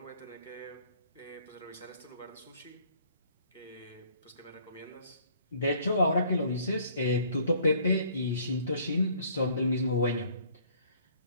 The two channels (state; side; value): inverted; both; correlation -0.59